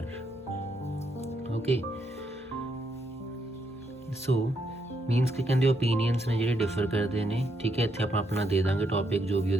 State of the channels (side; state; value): both; normal; correlation 0.77